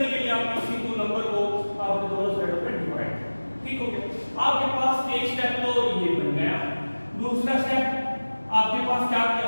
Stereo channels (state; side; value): inverted; both; correlation -1.00